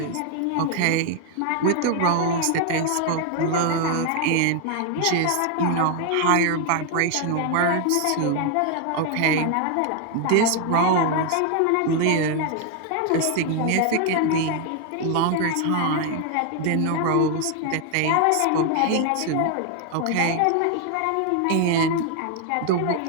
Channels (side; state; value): both; different; correlation 0.00